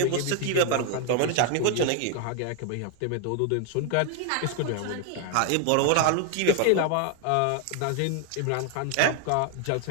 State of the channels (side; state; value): both; different; correlation 0.00